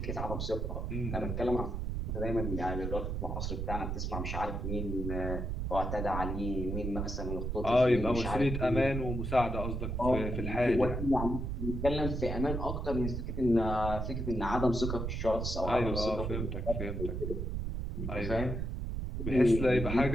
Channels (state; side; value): noise; right; rumble, 3 dB below the sound